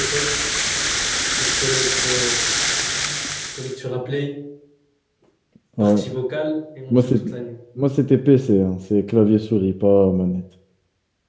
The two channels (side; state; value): both; identical; correlation 1.00